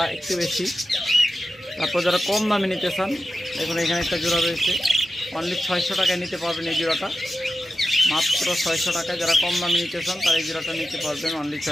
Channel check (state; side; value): normal; both; correlation 0.91